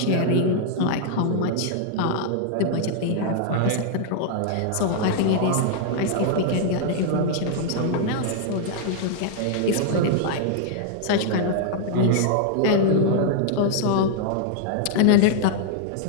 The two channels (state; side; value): different; both; correlation -0.01